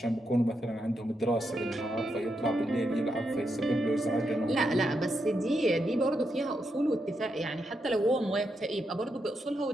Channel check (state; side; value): normal; both; correlation 0.83